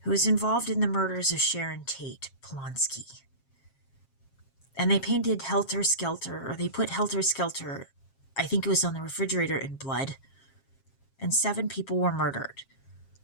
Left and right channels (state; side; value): late; right; 7.4 ms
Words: who was involved in the murders of Sharon Tate Polonsky. And they painted Helter Skelter, or they put Helter Skelter, I think it was on the refrigerator, in blood, and 7 people were murdered.